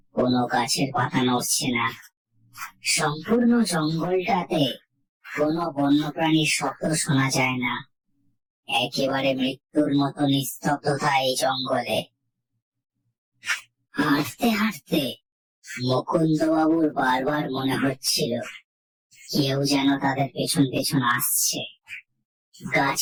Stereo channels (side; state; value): both; identical; correlation 1.00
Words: কোনো গাছের পাতা নড়ছে না। সম্পূর্ণ জঙ্গলটাতে কোনো বন্যপ্রাণীর শব্দ শোনা যায় না। একেবারে মৃত্যুর মতো নিস্তব্ধতা এই জঙ্গলে। হাঁটতে হাঁটতে মুকুন্দবাবুর বারবার মনে হচ্ছিল কেউ যেন তাদের পেছন পেছন আসছে।